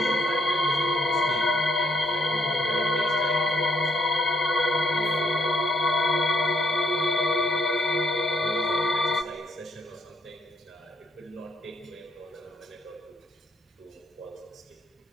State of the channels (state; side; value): normal; both; correlation 0.72